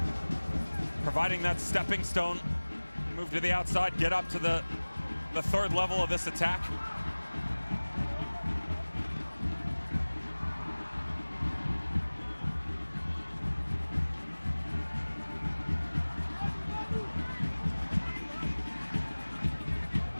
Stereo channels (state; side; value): inverted; both; correlation -1.00